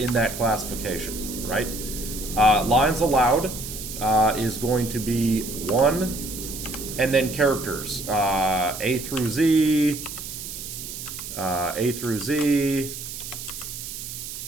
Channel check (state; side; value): noise; right; hiss, 9 dB below the sound